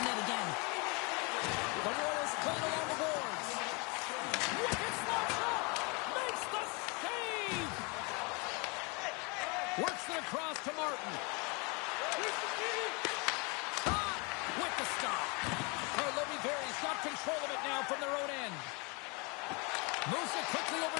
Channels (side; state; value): right; quieter; 30.4 dB